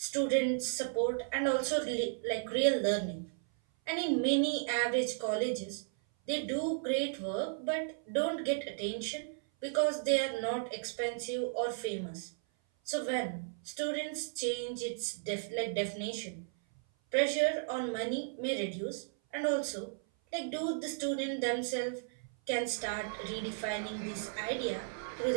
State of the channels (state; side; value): silent; left; 55 dB below the other